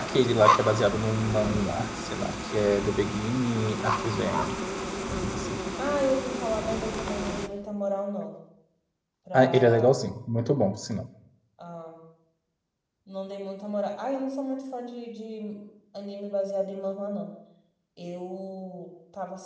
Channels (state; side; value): identical; both; correlation 1.00